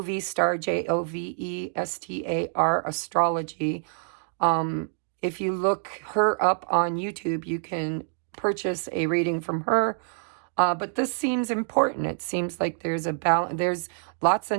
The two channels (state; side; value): silent; left; 60 dB below the other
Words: Jovestar astrology. If you look her up on YouTube, you can purchase a reading from her. But this seems important. It seems like there's a balance. There's lots